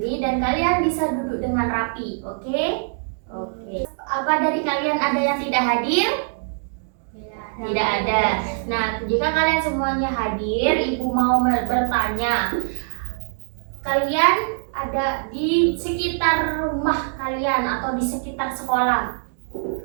dan kalian bisa duduk dengan rapi, oke? Oke. Apa dari kalian ada yang tidak hadir? Tidak ada. Nah, jika kalian semuanya hadir, Ibu mau bertanya. Kalian ada di sekitar rumah kalian atau di sekitar sekolah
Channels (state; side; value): silent; left; digital silence